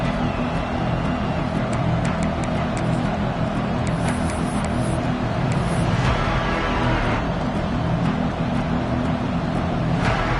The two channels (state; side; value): identical; both; correlation 1.00